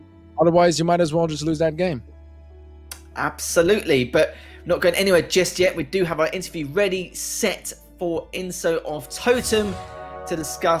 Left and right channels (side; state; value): both; identical; correlation 1.00